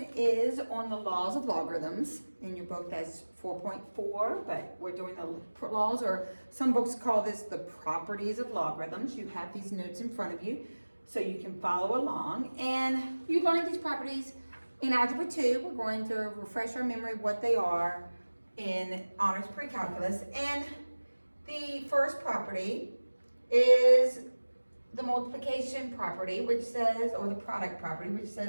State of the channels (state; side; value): inverted; both; correlation -1.00